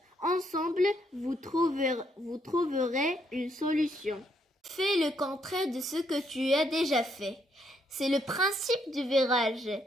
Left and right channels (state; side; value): normal; both; correlation 0.73